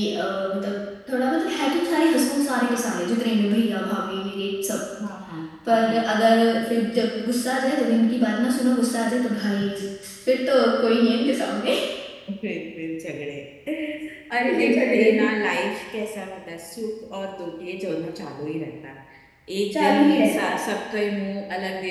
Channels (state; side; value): identical; both; correlation 1.00